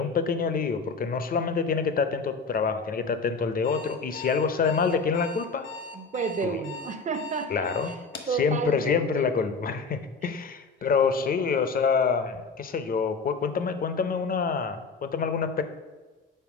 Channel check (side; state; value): right; quieter; 4.4 dB